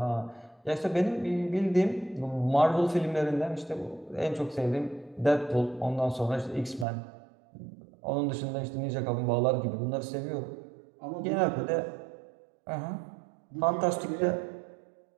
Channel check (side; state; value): left; drops out; at 6.9 s